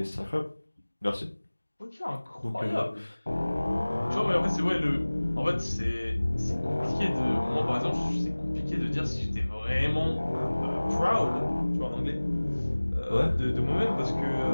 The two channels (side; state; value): both; inverted; correlation -1.00